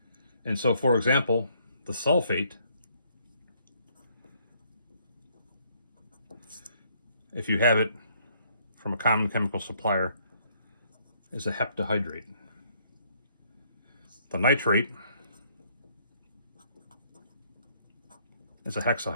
And so, for example, the sulfate, if you have it from a common chemical supplier, is a heptahydrate. The nitrate is a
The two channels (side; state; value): both; inverted; correlation -0.67